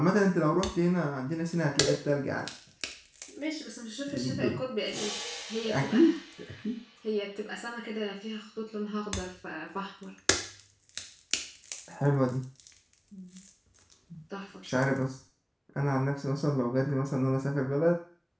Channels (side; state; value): both; identical; correlation 1.00